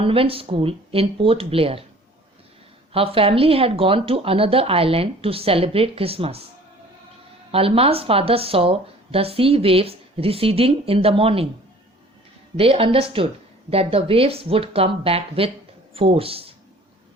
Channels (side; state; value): both; normal; correlation 0.50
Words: school in Port Blair. Her family had gone to another island to celebrate Christmas. Alma's father saw the sea waves receding in the morning. They understood that the waves would come back with force.